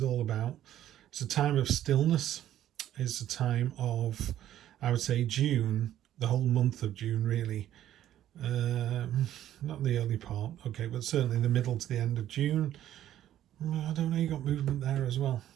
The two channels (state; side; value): quieter; left; 12.1 dB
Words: all about, it's a time of stillness. It's a time of, I would say, June, the whole month of June, really. Not the early part, okay, but certainly the middle to the end of June. I don't know, you got movement there as well.